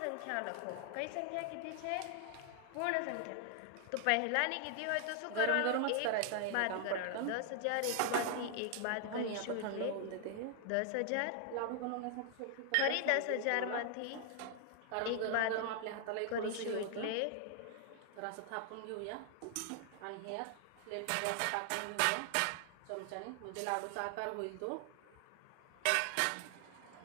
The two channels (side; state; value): both; different; correlation 0.00